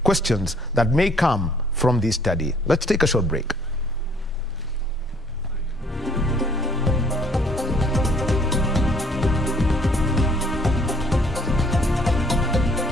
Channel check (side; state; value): both; normal; correlation 0.61